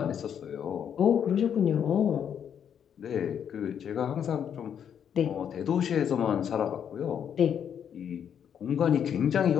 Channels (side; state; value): right; quieter; 8.5 dB